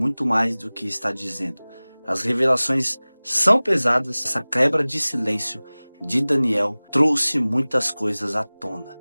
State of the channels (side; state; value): both; inverted; correlation -1.00